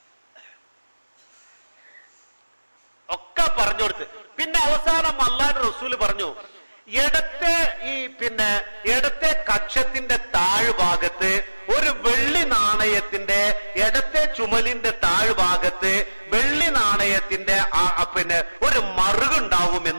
ഒക്കെ പറഞ്ഞു കൊടുത്ത്. പിന്നെ അവസാനം അള്ളാന്റെ റസൂല് പറഞ്ഞു, ഇടത്തെ കക്ഷത്തിന്റെ താഴ്ഭാഗത്ത് ഒരു വെള്ളി നാണയത്തിന്റെ, ഇടത്തെ ചുമലിന്റെ താഴ്ഭാഗത്ത് വെള്ളി നാണയത്തിന്റെ ഒരു മറുകുണ്ടാവും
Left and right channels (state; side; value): inverted; both; correlation -1.00